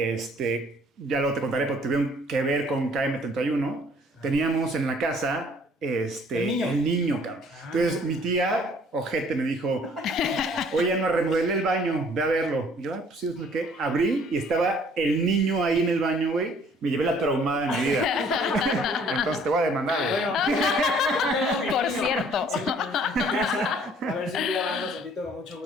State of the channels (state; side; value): normal; both; correlation 0.58